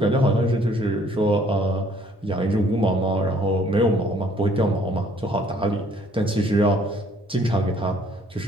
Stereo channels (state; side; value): normal; both; correlation 0.61